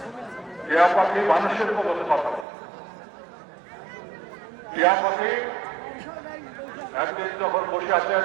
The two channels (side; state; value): left; drops out; at 2.5 s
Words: পাখি মানুষের মতো কথা বলে। টিয়া পাখি একদিন যখন বসে আছেন